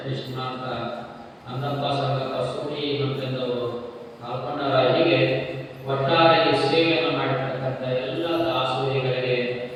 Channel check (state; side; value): identical; both; correlation 1.00